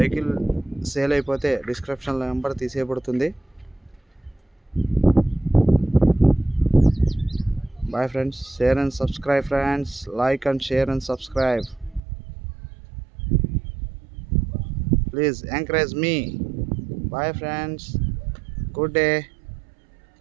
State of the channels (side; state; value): left; drops out; at 12.0 s